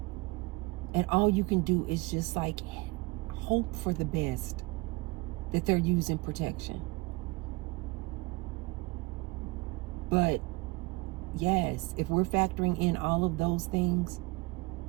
And all you can do is just like hope for the best, that they're using protection. But yes, if we're factoring in all of those things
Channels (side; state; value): left; quieter; 24.1 dB